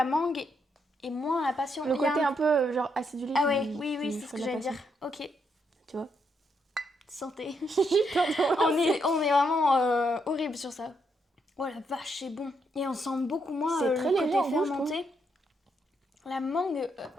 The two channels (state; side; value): normal; both; correlation 0.78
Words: mangue et moins la passion. Le côté un peu genre acidulé. Ah ouais, oui, c'est ce que j'allais dire. Ok. Tu vois? Santé. on est vraiment horrible sur ça. Oh la vache, c'est bon. Et on sent beaucoup moins c'est très le léger côté en fermenté. La mangue